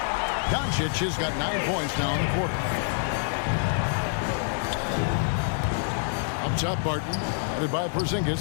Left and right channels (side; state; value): right; silent; digital silence